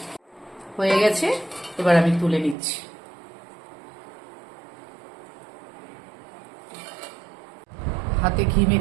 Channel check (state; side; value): drops out; left; at 2.6 s